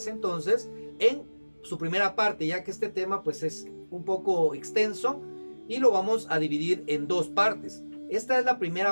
entonces en su primera parte, ya que este tema pues es un poco extenso y lo vamos a dividir en dos partes. Esta es la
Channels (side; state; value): both; inverted; correlation -1.00